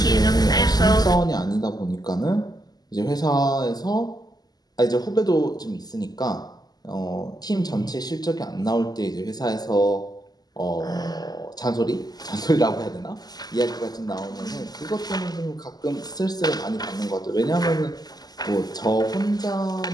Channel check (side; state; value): right; late; 0.19 ms